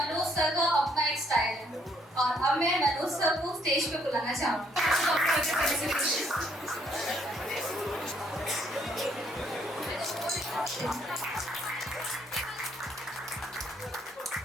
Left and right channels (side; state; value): both; normal; correlation 0.68